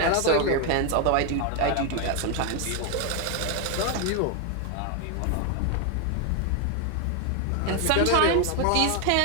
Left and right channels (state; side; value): different; both; correlation 0.01